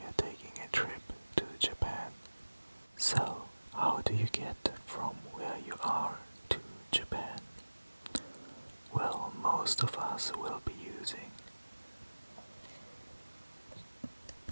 are taking a trip to Japan. So, how do you get from where you are to Japan? Well, most of us will be using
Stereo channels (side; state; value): both; inverted; correlation -1.00